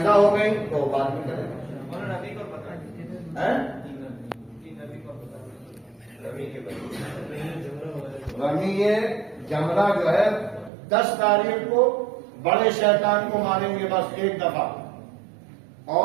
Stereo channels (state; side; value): drops out; left; at 10.7 s